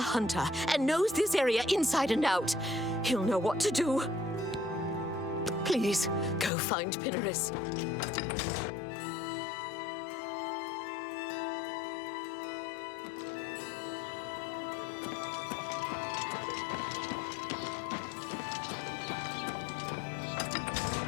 and knows this area inside and out. He'll know what to do. Please, go find Pinnerus.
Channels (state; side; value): drops out; right; at 6.5 s